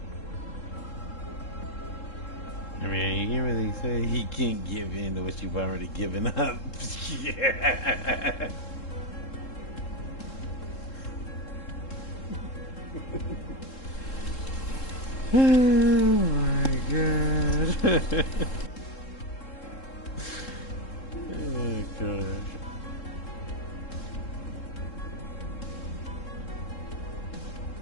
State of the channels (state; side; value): late; right; 3.7 ms